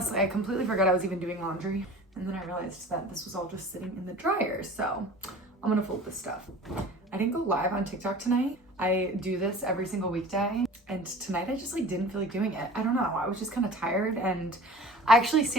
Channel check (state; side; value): normal; both; correlation 0.42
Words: I completely forgot I was even doing laundry. And then I realized that this was all just sitting in the dryer. So I'm gonna fold this stuff. I didn't go live on TikTok tonight. I do this every single weekday. And tonight I just like didn't feel like doing it. I don't know, I was just kind of tired. And I actually